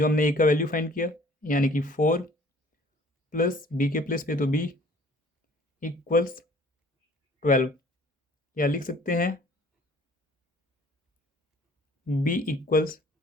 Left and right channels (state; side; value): normal; both; correlation 0.54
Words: हमने a का वैल्यू फाइंड किया यानी कि 4 प्लस b के प्लेस पे तो b इक्वल्स 12, या लिख सकते हैं b equals